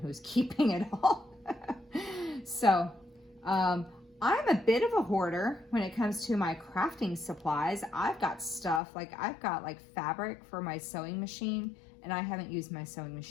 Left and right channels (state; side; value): drops out; right; at 8.8 s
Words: was keeping it all. So, I'm a bit of a hoarder when it comes to my crafting supplies. I've got stuff, like I've got like fabric for my sewing machine, and I haven't used my sewing